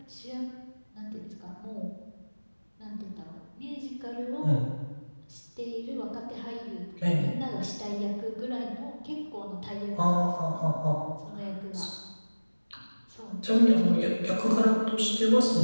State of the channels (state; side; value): inverted; both; correlation -1.00